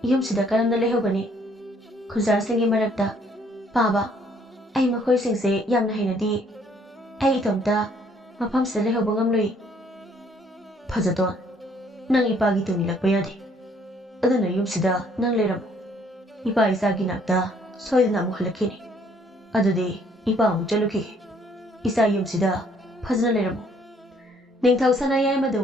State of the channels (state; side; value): normal; both; correlation 0.64